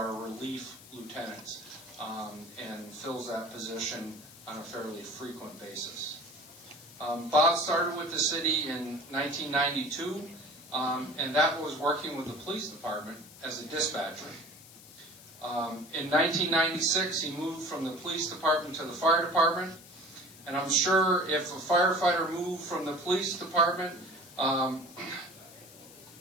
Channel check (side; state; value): left; noise; hiss, 20 dB below the sound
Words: relief lieutenants and fills that position on a fairly frequent basis. Bob started with the city in 1992, and that was working with the police department as a dispatcher. In 1996, he moved from the police department to the fire department, and I'm sure if a firefighter moved from the police department